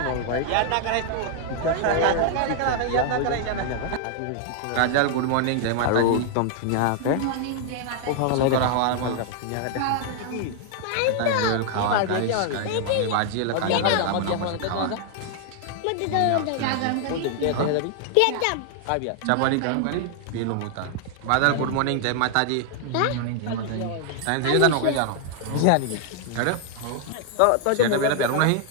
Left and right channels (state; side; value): different; both; correlation 0.00